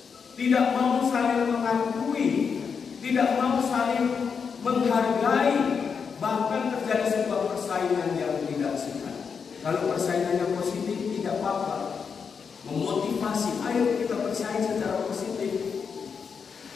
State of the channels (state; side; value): quieter; right; 6.1 dB